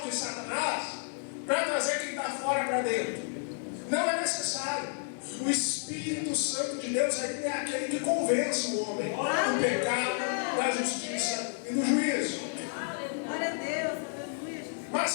de Satanás, para trazer quem está fora para dentro. Não é necessário. O Espírito Santo de Deus é aquele que convence o homem do pecado, da justiça e do juízo. Glória a Deus, aleluia, Jesus.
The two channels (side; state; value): right; silent; 57 dB below the other